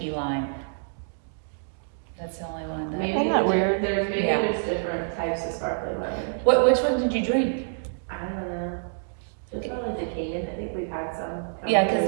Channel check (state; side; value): silent; left; digital silence